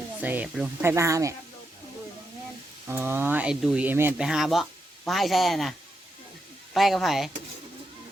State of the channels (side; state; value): both; normal; correlation 0.84